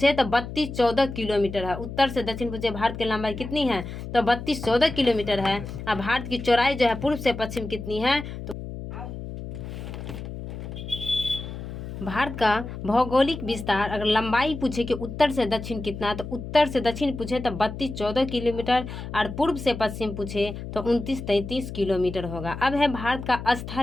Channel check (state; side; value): noise; left; hum, 9 dB below the sound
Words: तो 32-14 किलोमीटर है। उत्तर से दक्षिण पूछे भारत की लंबाई कितनी है तो 32-14 किलोमीटर है। और भारत की चौड़ाई जो है पूर्व से पश्चिम कितनी है तो भारत का भौगोलिक विस्तार अगर लंबाई पूछे कि उत्तर से दक्षिण कितना, तो उत्तर से दक्षिण पूछे तो 32-14 किलोमीटर और पूर्व से पश्चिम पूछे तो 29-33 किलोमीटर होगा। अब है भारत का